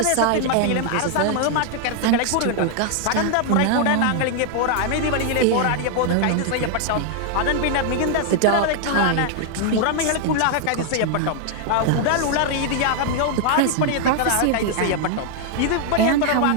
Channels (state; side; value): different; both; correlation 0.00